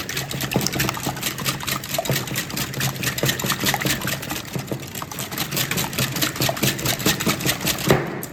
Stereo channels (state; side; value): identical; both; correlation 1.00